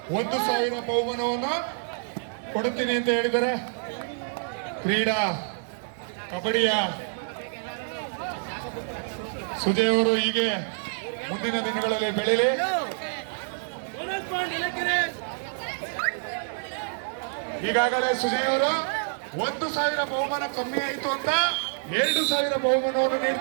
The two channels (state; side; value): silent; left; digital silence